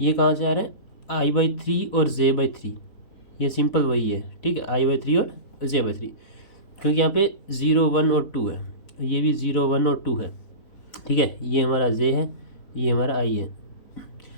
ये कहाँ से आ रहे हैं, I/3 और J/3, ये सिंपल वही है। ठीक है, I/3 और J/3, क्योंकि यहाँ पे 0 1 और 2 है, ये भी 0 1 और 2 है। ठीक है, ये हमारा J है, ये हमारा I है।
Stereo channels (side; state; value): right; late; 4.0 ms